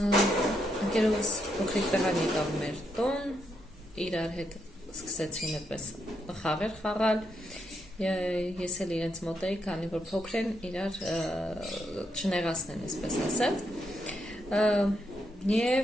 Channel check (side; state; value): both; normal; correlation 0.80